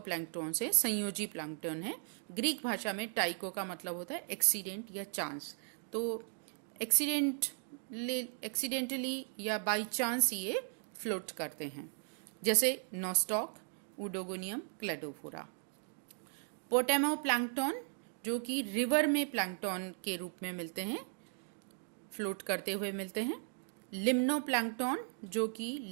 है, संयोजी प्लैंक्टॉन है। ग्रीक भाषा में टाइको का मतलब होता है एक्सीडेंट या चांस। तो एक्सीडेंटली या बाई चांस ये फ्लोट करते हैं, जैसे नोस्टॉक, उडोगोनियम, क्लेडोफोरा। पोटेमो प्लैंक्टॉन, जो कि रिवर में प्लैंक्टॉन के रूप में मिलते हैं, फ्लोट करते हुए मिलते हैं। लिम्नो प्लैंक्टॉन, जो कि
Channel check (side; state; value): left; silent; 53 dB below the other